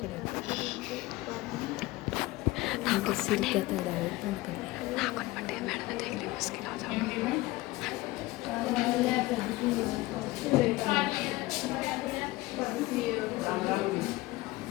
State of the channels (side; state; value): right; quieter; 19.4 dB